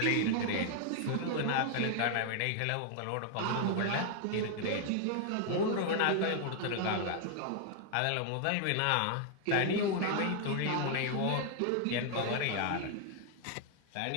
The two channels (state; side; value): different; both; correlation 0.00